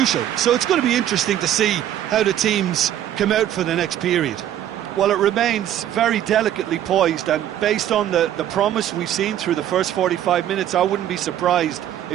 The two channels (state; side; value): quieter; left; 11.4 dB